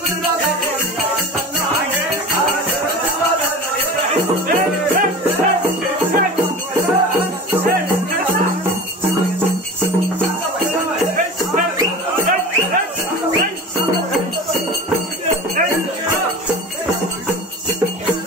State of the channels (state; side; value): normal; both; correlation 0.34